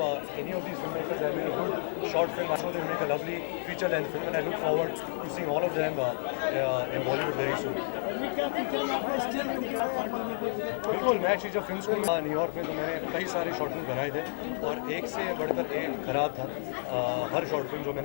any of these filmmakers have made a good short film, I'm sure they'll make a lovely feature-length film, and I look forward to seeing all of them in Bollywood very soon. बिल्कुल, मैं actually जब film school में New York में तो मैंने कई सारे short film बनाए थे और एक से बढ़कर एक खराब था हर शॉर्ट फिल्म जो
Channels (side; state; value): right; silent; 57 dB below the other